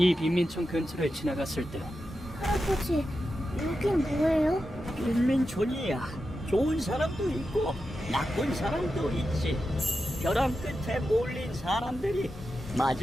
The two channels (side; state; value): both; normal; correlation 0.90